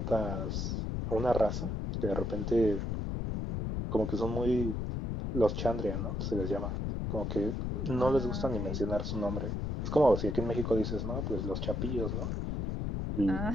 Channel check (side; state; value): left; noise; rumble, 2 dB below the sound